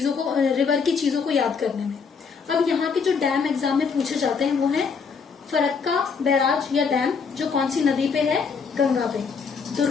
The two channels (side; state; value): right; quieter; 5.6 dB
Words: की चीजों को याद करने में। अब यहाँ के जो डैम एग्जाम में पूछे जाते हैं वो है फरक्का बैराज या डैम, जो कौन सी नदी पे है, गंगा पे।